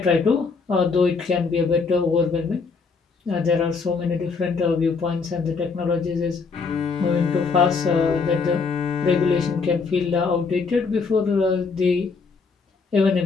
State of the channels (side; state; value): right; quieter; 4.8 dB